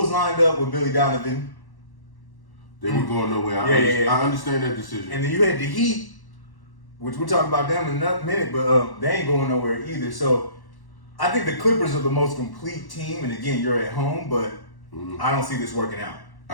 lined up with Billy Donovan. They were going nowhere. I understand that decision. And then you had the Heat, which we'll talk about them in a minute, but they ain't going nowhere either. So I think the Clippers are the most complete team. And again, you're at home, but I don't see this working out.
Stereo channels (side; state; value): right; late; 1.1 ms